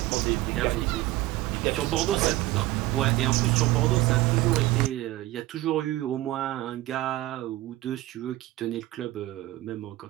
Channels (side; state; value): left; quieter; 17.2 dB